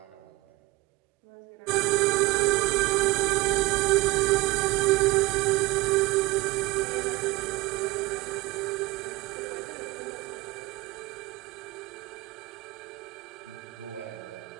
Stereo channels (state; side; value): quieter; left; 21.3 dB